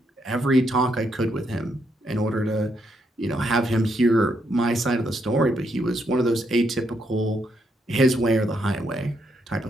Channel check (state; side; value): normal; both; correlation 0.77